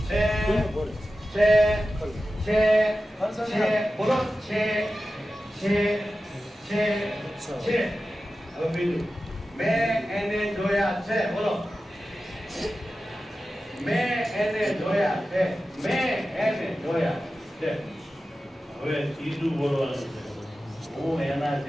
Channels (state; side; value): normal; both; correlation 0.94